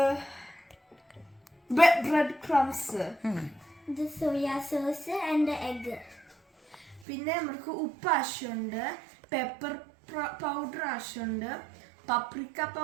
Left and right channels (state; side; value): drops out; left; at 7.1 s